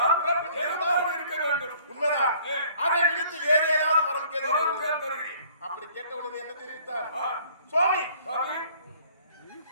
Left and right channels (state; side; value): inverted; both; correlation -0.56